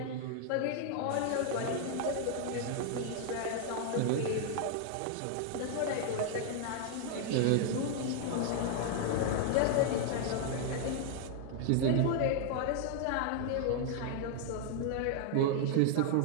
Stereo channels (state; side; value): different; both; correlation 0.00